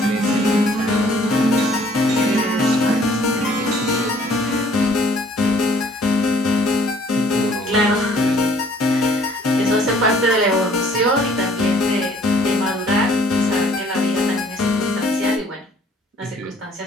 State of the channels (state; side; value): normal; both; correlation 0.59